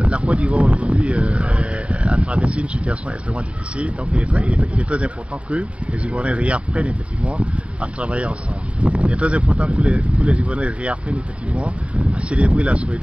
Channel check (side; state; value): left; late; 0.061 ms